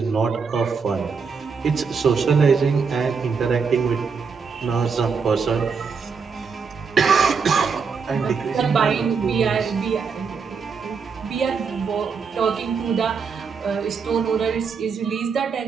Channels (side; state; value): left; quieter; 5.5 dB